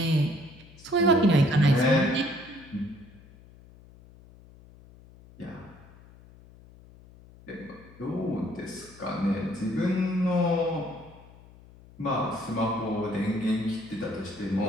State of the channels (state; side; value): noise; left; hum, 23 dB below the sound